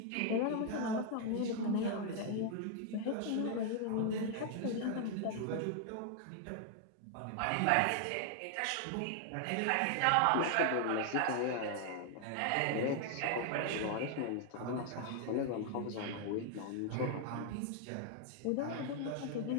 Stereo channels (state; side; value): different; both; correlation 0.00